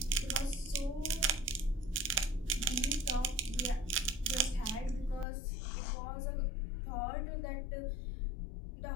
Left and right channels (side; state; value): right; drops out; at 5.2 s